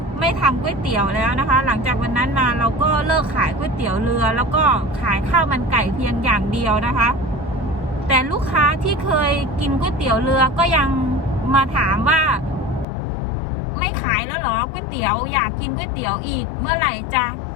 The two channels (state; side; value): drops out; right; at 12.9 s